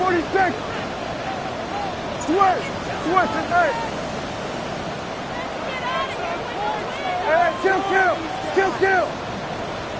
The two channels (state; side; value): identical; both; correlation 1.00